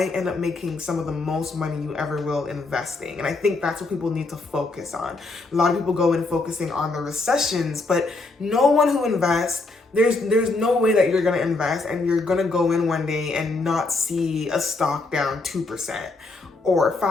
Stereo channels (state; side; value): quieter; right; 3.5 dB